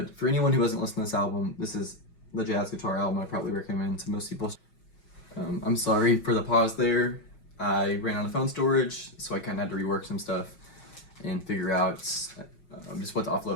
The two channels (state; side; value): late; right; 5.5 ms